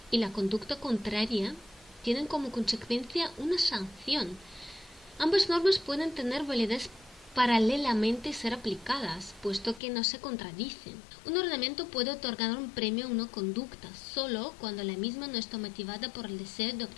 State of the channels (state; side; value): drops out; right; at 9.8 s